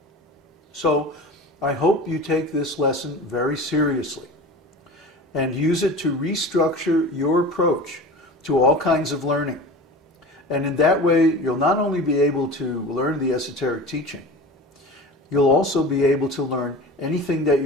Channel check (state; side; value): normal; both; correlation 0.35